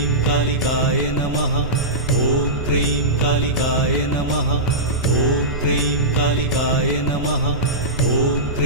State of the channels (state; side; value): noise; right; rumble, 8 dB below the sound